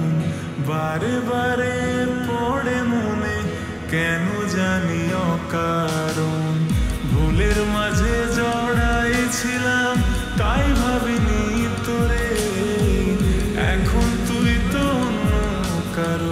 বারে বারে পড়ে মনে কেন জানি অকারণ। ভুলের মাঝে জড়াইছিলাম তাই ভাবিনি তোরে, এখন তুই তো অন্য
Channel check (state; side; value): identical; both; correlation 1.00